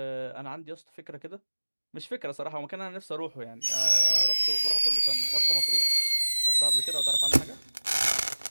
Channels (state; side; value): inverted; both; correlation -1.00